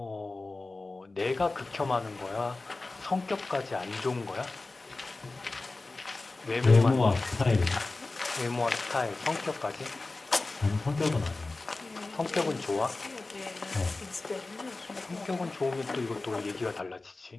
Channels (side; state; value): right; quieter; 3.4 dB